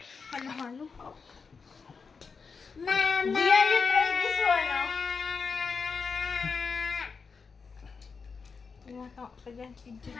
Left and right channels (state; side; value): quieter; right; 5.2 dB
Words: Halo-halo. Mama! Dia, you try this one, oh. Tumatawa ka dyan, video.